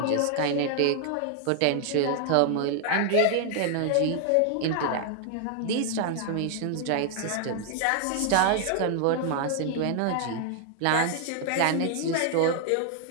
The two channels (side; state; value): both; different; correlation 0.00